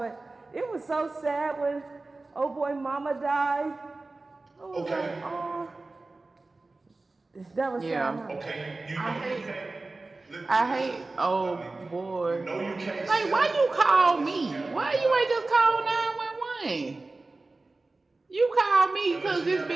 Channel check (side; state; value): left; quieter; 3.3 dB